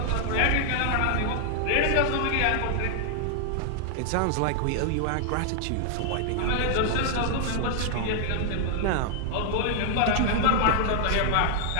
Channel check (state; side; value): different; both; correlation 0.00